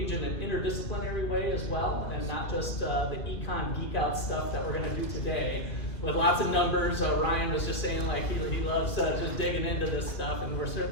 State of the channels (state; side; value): late; right; 2.4 ms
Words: in an interdisciplinary way as well, and not just the econ geek out stuff that we're going to do today with lots of numbers. Ryan was just saying like he loves just digging into this stuff, and we're